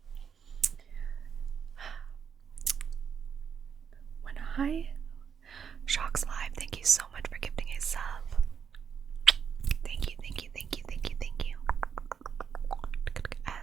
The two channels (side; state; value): left; quieter; 7.1 dB